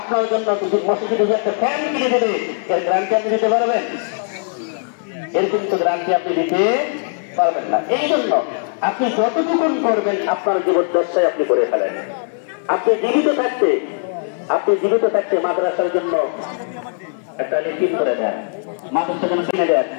জন্য মসজিদে একটা ফ্যান কিনে দেবে, এর গ্যারান্টি আপনি দিতে পারবেন? এর কিন্তু গ্যারান্টি আপনি দিতে পারবেন না। এই জন্য আপনি যতটুকুন করবেন আপনার জীবদ্দশায় আপনি করে ফেলেন। আপনি জীবিত থাকতে মাদ্রাসার জন্য একটা লিখিত করে দেন, মাদ্রাসার জন্য কিনে দেন,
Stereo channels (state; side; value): silent; right; 64 dB below the other